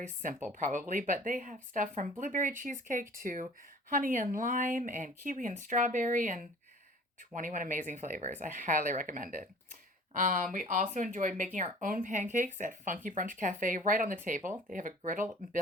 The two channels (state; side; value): normal; both; correlation 0.47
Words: simple probably, but they have stuff from blueberry cheesecake to honey and lime and kiwi and strawberry and 21 amazing flavors. I highly recommend it. We also enjoyed making our own pancakes at Funky Brunch Cafe right on the table. They have a griddle